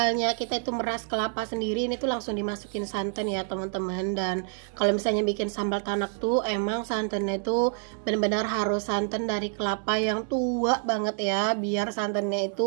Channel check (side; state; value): left; silent; 60 dB below the other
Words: kita itu meras kelapa sendiri, ini tuh langsung dimasukin santan ya teman-teman. Dan kalau misalnya bikin sambal tanak tuh emang santannya itu benar-benar harus santan dari kelapa yang tua banget ya, biar santannya